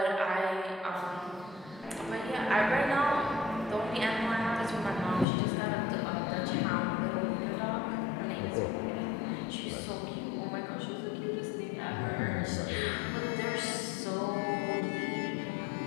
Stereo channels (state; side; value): drops out; right; at 5.2 s